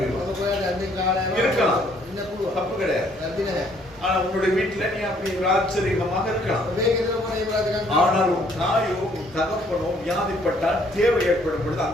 இருக்கலாம், தப்பு கிடையாது. ஆனா உன்னுடைய வீட்டுல நீ அப்படி ஆச்சரியமாக இருக்கலாம். ஆனால் உன் தாயோ உன் தகப்பனோ வியாதிப்பட்டால் தேவை ஏற்படும் பொழுது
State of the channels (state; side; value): normal; both; correlation 0.64